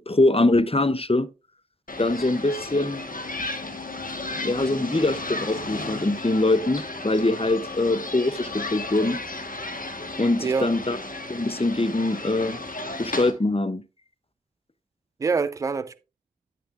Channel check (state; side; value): normal; both; correlation 0.69